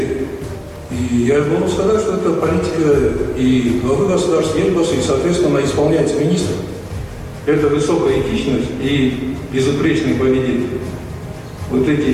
И я могу сказать, что это политика и главы государства, и, соответственно, исполняется министр. Это высокая этичность и безупречное поведение. Вот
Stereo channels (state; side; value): identical; both; correlation 1.00